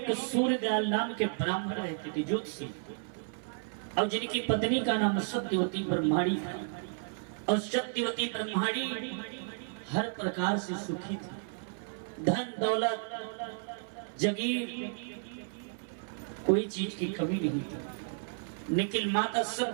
सूर्यदयाल नाम के ब्राह्मण रहते थे, ज्योतिषी, और जिनकी पत्नी का नाम सत्यवती ब्रह्माणी था। और सत्यवती ब्रह्माणी हर प्रकार से सुखी थी, धन दौलत जगीर कोई चीज की कमी नहीं थी। लेकिन माता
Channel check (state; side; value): silent; left; 56 dB below the other